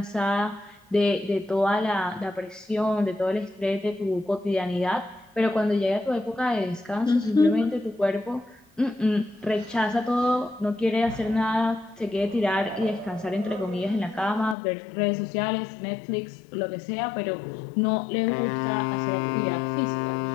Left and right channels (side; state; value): right; drops out; at 14.6 s